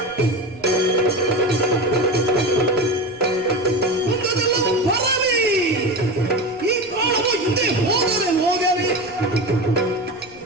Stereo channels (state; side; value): noise; left; rumble, 26 dB below the sound